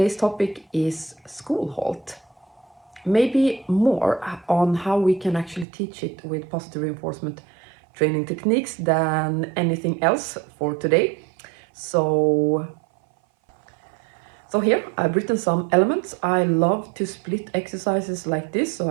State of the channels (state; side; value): drops out; left; at 5.7 s